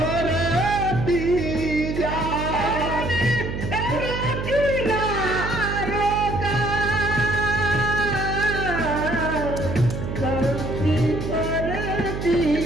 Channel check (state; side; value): noise; right; hum, 5 dB below the sound